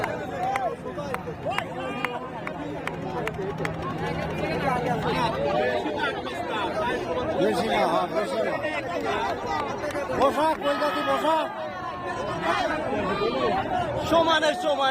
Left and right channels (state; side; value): identical; both; correlation 1.00